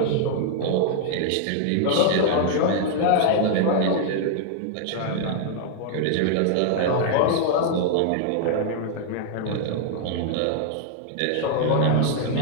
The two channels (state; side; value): different; both; correlation -0.01